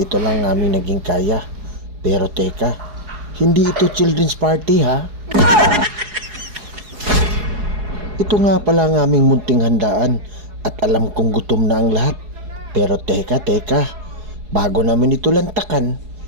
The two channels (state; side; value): late; left; 4.8 ms